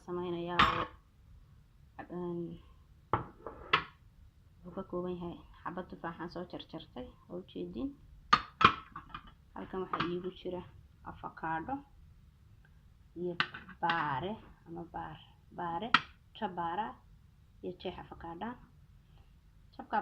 يا وكوكوبين هاي حبة تفاحة سو جرجرتي أو جيدين halkan waxa iigu jira avocado iyo baare ama baare jabara iyo jeex avocado jabka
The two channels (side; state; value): both; identical; correlation 1.00